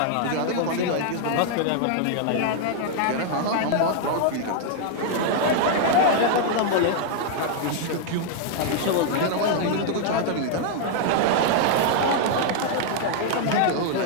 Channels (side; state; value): both; different; correlation 0.00